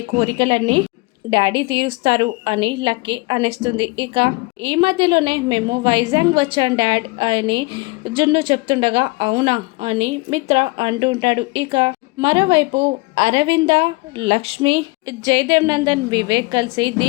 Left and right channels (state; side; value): quieter; right; 26.1 dB